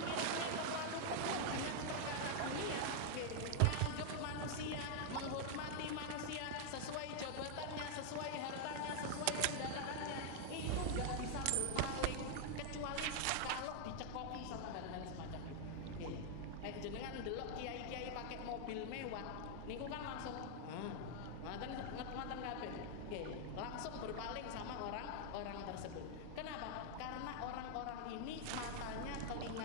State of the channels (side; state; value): both; different; correlation 0.00